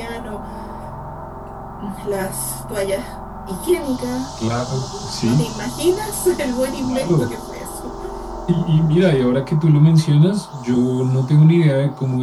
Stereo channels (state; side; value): identical; both; correlation 1.00